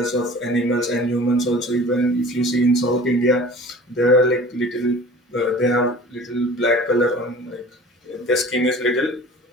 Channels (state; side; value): normal; both; correlation 0.43